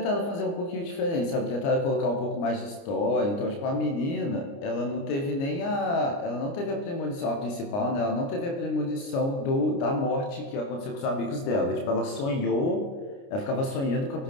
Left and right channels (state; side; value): late; right; 29 ms